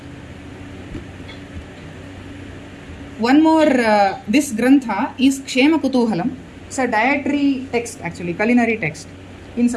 One more, this Grantha is Kshema Kutuhalam. It's a dietary text actually, culinary text in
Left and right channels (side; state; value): both; identical; correlation 1.00